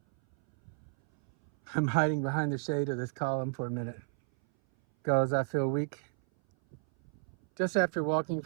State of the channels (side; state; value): left; silent; 57 dB below the other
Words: I'm hiding behind the shade of this column for a minute because I feel weak. Just after walking